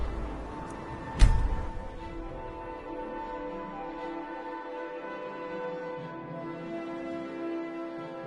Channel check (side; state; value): both; identical; correlation 1.00